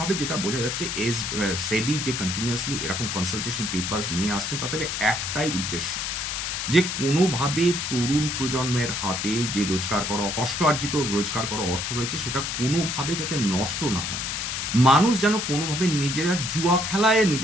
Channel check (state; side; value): noise; left; hiss, 2 dB below the sound